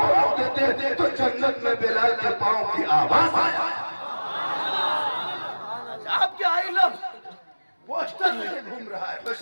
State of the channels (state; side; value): inverted; both; correlation -1.00